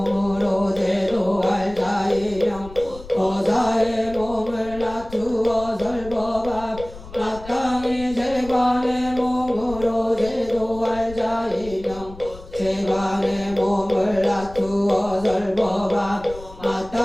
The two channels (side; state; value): left; noise; rumble, 16 dB below the sound